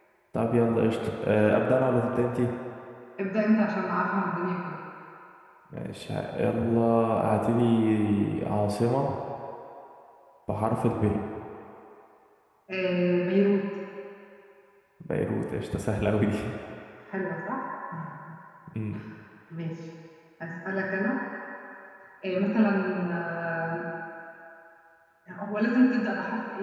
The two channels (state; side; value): identical; both; correlation 1.00